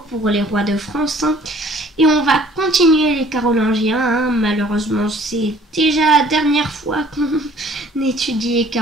pour les rois de France et on va continuer les Carolingiens. Malheureusement, c'est déjà la dernière fois qu'on étudie les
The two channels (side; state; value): both; normal; correlation 0.55